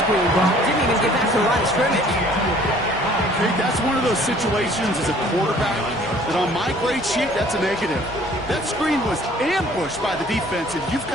Brock. Didn't even get back to the line of scrimmage. Hey, that's one of those situations as a quarterback that on my grade sheet, that's a negative. That screen was ambushed by the defense, and you've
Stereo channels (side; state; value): both; normal; correlation 0.55